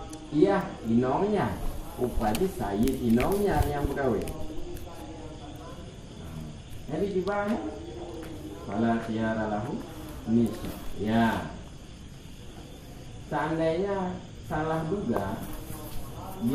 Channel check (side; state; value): both; identical; correlation 1.00